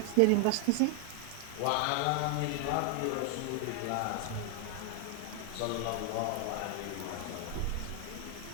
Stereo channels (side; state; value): both; different; correlation 0.00